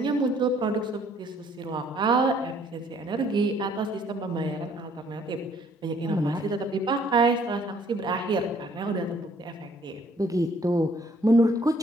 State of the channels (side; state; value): both; normal; correlation 0.62